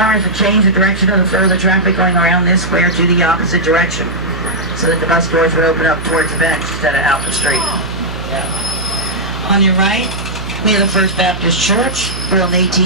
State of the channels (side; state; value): right; noise; hum, 10 dB below the sound